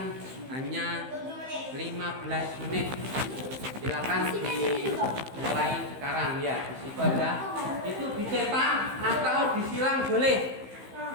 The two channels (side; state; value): left; late; 15 ms